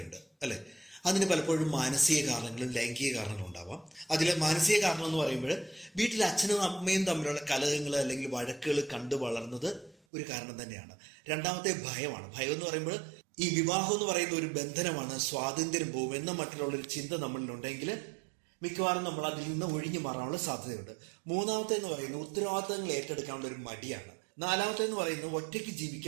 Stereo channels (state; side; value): drops out; left; at 10.0 s